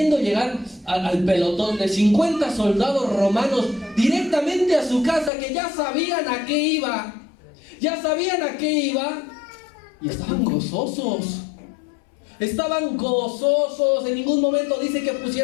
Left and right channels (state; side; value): drops out; right; at 5.3 s